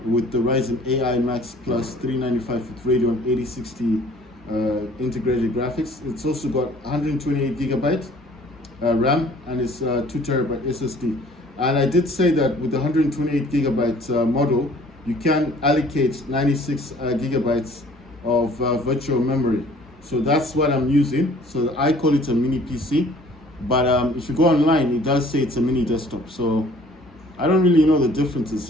with the Ryzen AI Max Plus 395 with Radeon 8060 integrated graphics. It's also got 128 gigabyte RAM, and it's 2 terabyte SSD. And I did say that with the 128 gigabyte model, you can allocate 96 gigabytes of virtual memory. So that's what I'm using. So I call it a mini PC, but if you go online, it does say it's a mini desktop. So I don't really know the difference. It's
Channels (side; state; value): both; normal; correlation 0.54